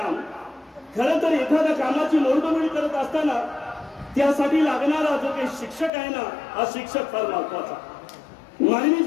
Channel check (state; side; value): drops out; right; at 5.9 s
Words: खरं तर एखाद्या कामाची मोडतोड करत असताना त्यासाठी लागणारा जो काही शिक्षक आहे ना, हा शिक्षक फार महत्वाचा. मानवी